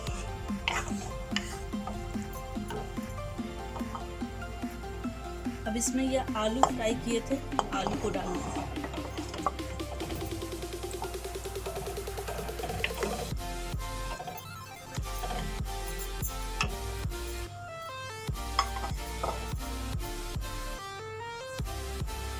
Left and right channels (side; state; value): both; identical; correlation 1.00